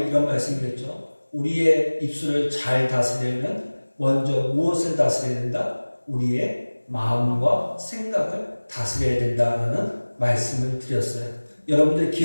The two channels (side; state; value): both; inverted; correlation -1.00